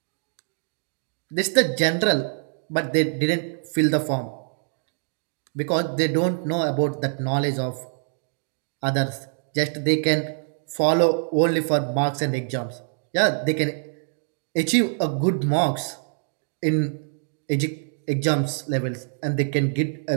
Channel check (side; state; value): left; silent; digital silence